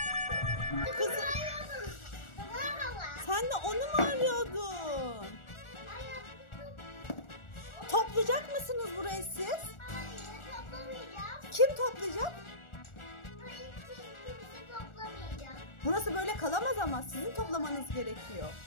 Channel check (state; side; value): late; right; 1.4 ms